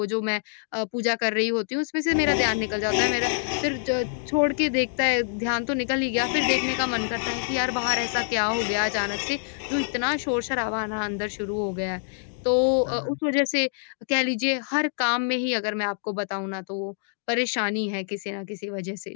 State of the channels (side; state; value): right; silent; digital silence